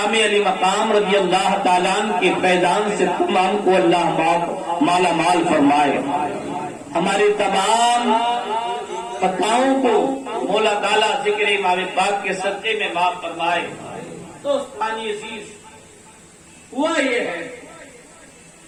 علی مقام رضی اللہ تعالیٰ عنہ کے فیضان سے تمام کو اللہ مالا مال فرمائے، ہمارے تمام خطاؤں کو مولا تعالیٰ ذکر امام پاک کے صدقے میں معاف فرمائے۔ دوستانی عزیز، ہوا یہ ہے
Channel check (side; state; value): both; identical; correlation 1.00